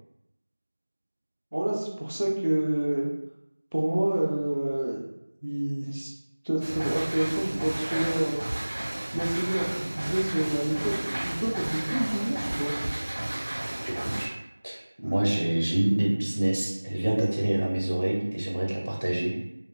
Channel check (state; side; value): inverted; both; correlation -1.00